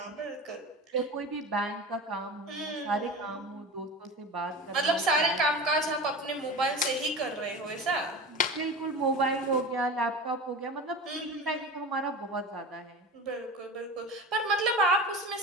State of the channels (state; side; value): normal; both; correlation 0.31